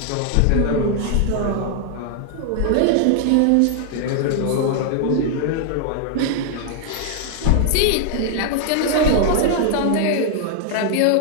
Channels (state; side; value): different; both; correlation 0.00